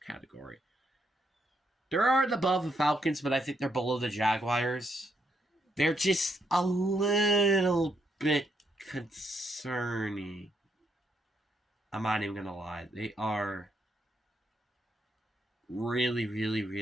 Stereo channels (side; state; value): both; normal; correlation 0.77